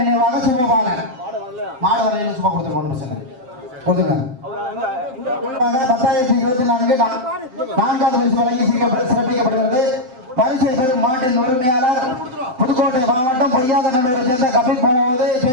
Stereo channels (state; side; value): late; left; 7.7 ms